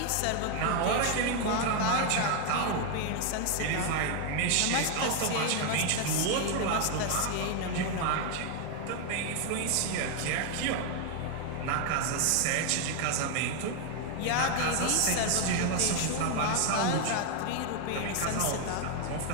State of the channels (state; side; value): different; both; correlation 0.01